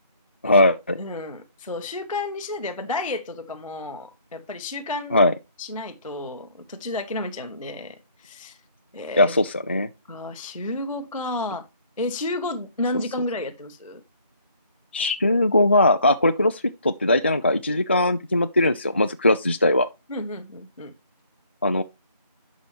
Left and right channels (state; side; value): inverted; both; correlation -0.62